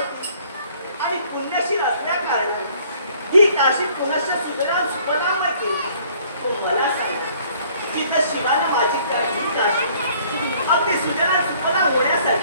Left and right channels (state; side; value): inverted; both; correlation -0.58